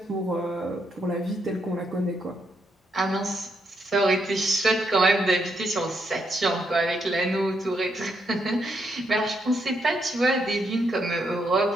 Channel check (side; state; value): both; normal; correlation 0.78